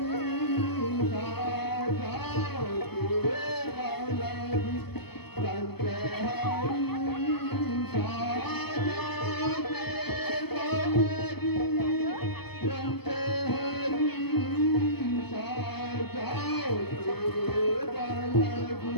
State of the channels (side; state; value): right; late; 0.97 ms